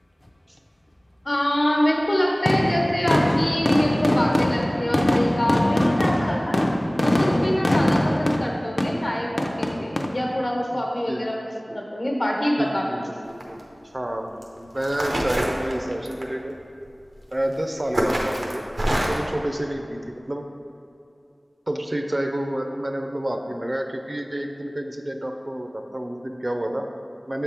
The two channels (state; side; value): normal; both; correlation 0.98